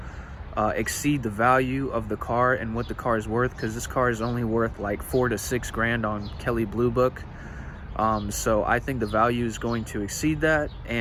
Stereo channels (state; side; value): identical; both; correlation 1.00